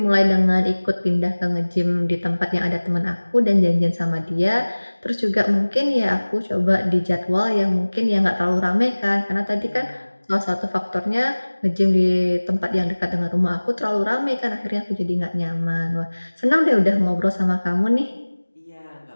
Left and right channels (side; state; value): both; inverted; correlation -1.00